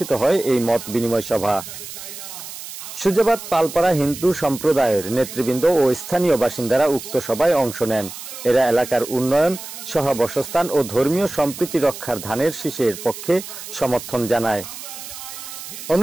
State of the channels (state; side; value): noise; right; hiss, 11 dB below the sound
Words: হয় এই মত বিনিময় সভা। সুজাবাদ পালপাড়া হিন্দু সম্প্রদায়ের নেতৃবৃন্দ ও স্থানীয় বাসিন্দারা উক্ত সভায় অংশ নেন। এরা এলাকার উন্নয়ন, সহাবস্থান ও ধর্মীয় সম্প্রীতি রক্ষার ধানের শীষের পক্ষে সমর্থন জানায়।